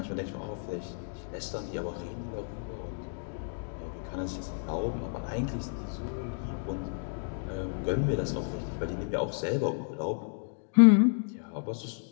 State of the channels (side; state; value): right; silent; digital silence